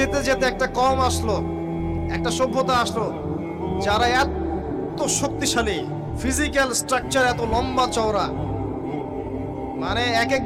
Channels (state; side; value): identical; both; correlation 1.00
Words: যেতে একটা কওম আসলো, একটা সভ্যতা আসলো, যারা এত শক্তিশালী, ফিজিক্যাল স্ট্রাকচার এত লম্বা চওড়া, মানে এক